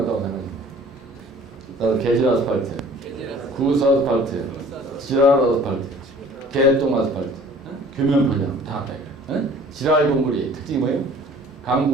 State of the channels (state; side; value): normal; both; correlation 0.50